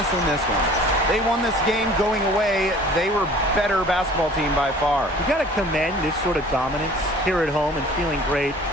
in this one. They won this game going away. They were better basketball team by far. You got to commend this sort of dominance here at home and feeling great,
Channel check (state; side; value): normal; both; correlation 0.48